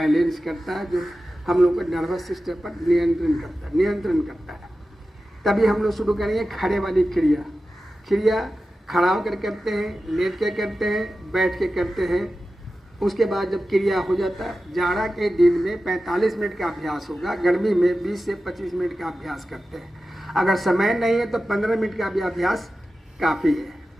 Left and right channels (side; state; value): both; normal; correlation 0.93